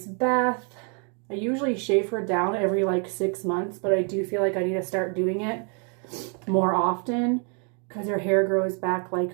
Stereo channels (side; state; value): left; quieter; 38.0 dB